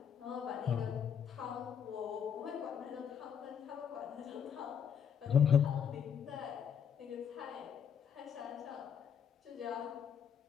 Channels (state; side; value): quieter; right; 7.9 dB